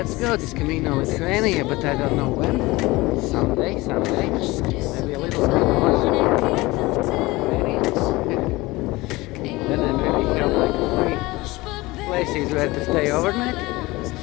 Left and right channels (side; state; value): right; quieter; 21.1 dB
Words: go. This Camino Lithuania, but I don't know when. Someday. Maybe a little bit more Lithuanians. Then I maybe have like 3 places where to stay overnight.